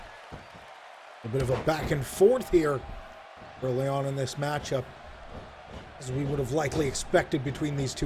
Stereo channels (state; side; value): identical; both; correlation 1.00